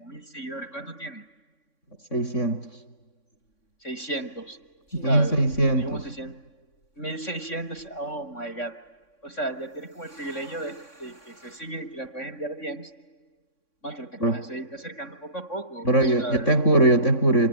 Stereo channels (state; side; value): late; right; 3.6 ms